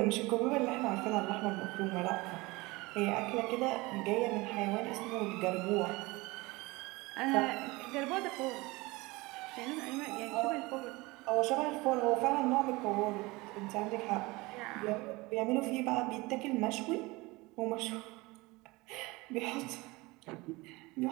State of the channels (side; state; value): left; quieter; 22.8 dB